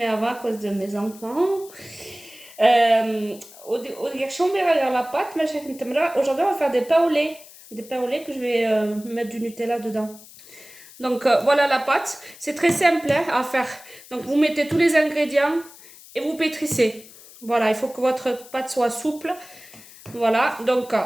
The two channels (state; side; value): noise; left; hiss, 20 dB below the sound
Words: avant à cause de mes enfants. Euh, la pâte, mais aujourd'hui on va faire des pains au lait. Des pains au lait que je vais mettre du Nutella dedans. Donc voilà la pâte. C'est très simple hein, à faire. Donc vous mettez tous les ingrédients et vous pétrissez. Voilà, il faut que votre pâte soit souple. Voilà, donc